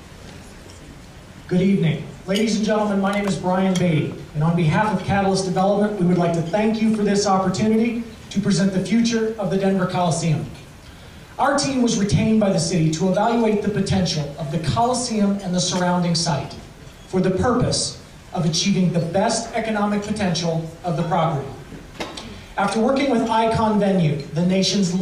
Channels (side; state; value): both; identical; correlation 1.00